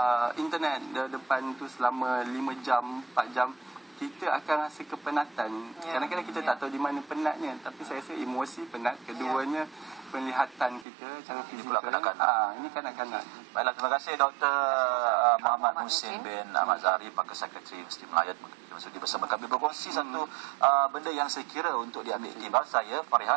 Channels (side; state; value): left; drops out; at 10.9 s